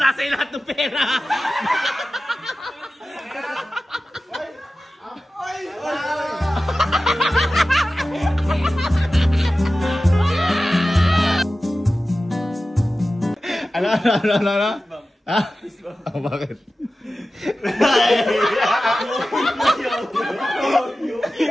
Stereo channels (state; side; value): normal; both; correlation 0.95